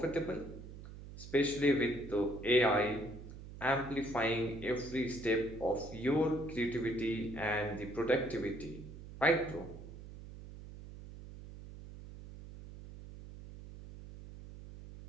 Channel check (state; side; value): noise; right; hum, 14 dB below the sound